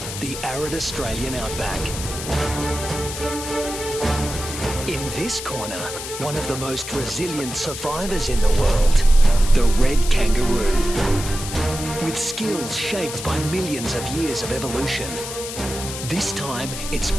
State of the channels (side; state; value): left; noise; hiss, 8 dB below the sound